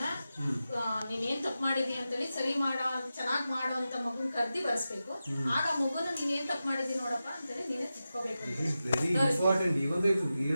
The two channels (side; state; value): both; inverted; correlation -0.92